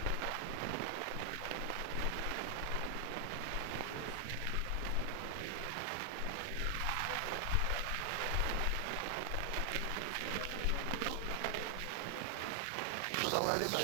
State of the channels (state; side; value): different; both; correlation 0.00